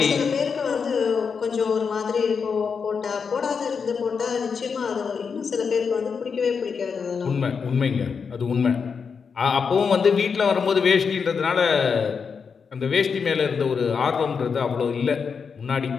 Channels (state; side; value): quieter; right; 5.9 dB